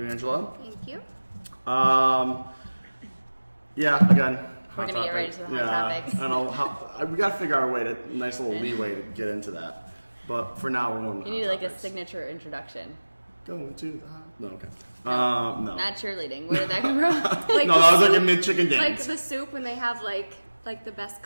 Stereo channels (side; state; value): both; inverted; correlation -1.00